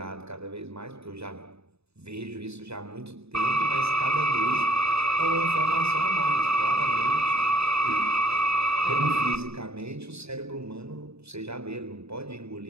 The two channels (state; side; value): late; left; 0.79 ms